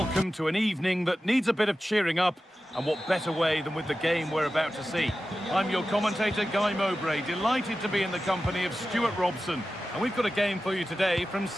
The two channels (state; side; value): normal; both; correlation 0.93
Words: to an evening that needs a bit of cheering up, and what better way than with the game we're about to see. I'm your commentator, Guy Mowbray, delighted to be in the company of Stuart Robson, and we've got a game for you today from